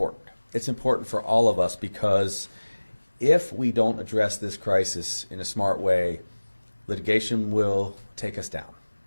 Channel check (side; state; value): both; inverted; correlation -1.00